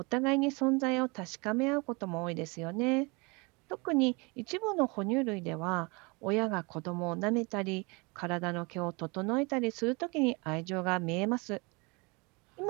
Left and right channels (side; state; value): left; quieter; 28.1 dB